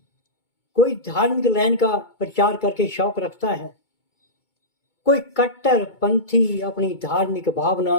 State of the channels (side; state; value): right; late; 2.2 ms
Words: कोई धार्मिक लाइन का प्रचार करके शौक रखता है, कोई कट्टर पंथी अपनी धार्मिक